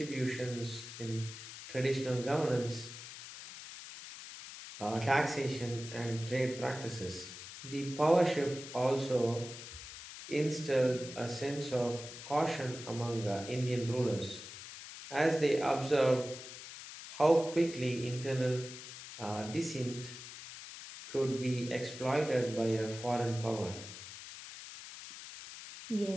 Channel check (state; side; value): noise; left; hiss, 12 dB below the sound